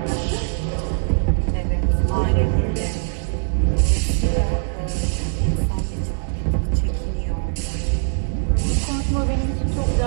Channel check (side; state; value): left; silent; 65 dB below the other